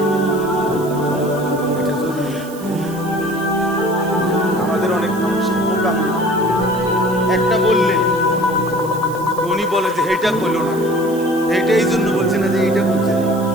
এটা জরুরি। আমাদের অনেক মানুষের মোকাম একটা বললে উনি বলে যে এইটা করলো না, এইটা এই জন্য বলছে না যে এইটা বলছে না,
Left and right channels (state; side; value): noise; right; hiss, 18 dB below the sound